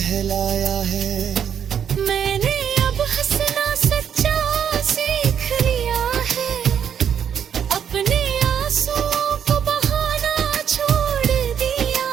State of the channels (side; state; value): left; quieter; 8.4 dB